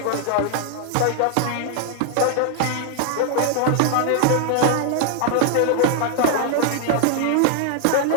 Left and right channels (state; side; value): different; both; correlation 0.00